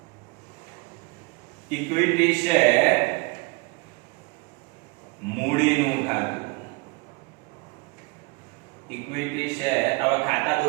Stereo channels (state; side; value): quieter; left; 27.2 dB